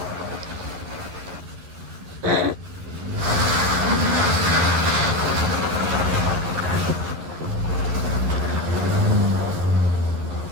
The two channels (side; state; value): left; late; 11 ms